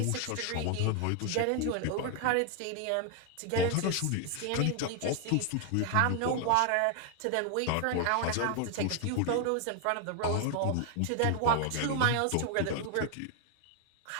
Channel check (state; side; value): different; both; correlation 0.01